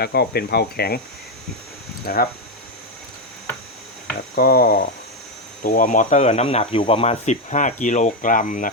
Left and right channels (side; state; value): both; normal; correlation 0.05